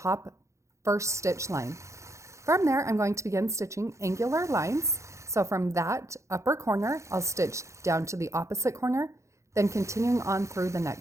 first stitch line. From there, I'm going to begin stitching angular lines. So from that upper corner, I'll stitch down to the opposite corner, then continuing on through the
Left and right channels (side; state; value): left; late; 0.14 ms